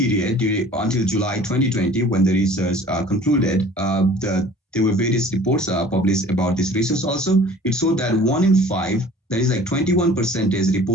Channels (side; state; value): both; normal; correlation 0.47